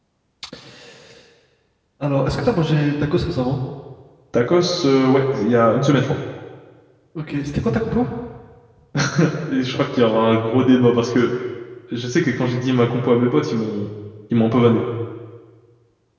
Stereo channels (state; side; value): identical; both; correlation 1.00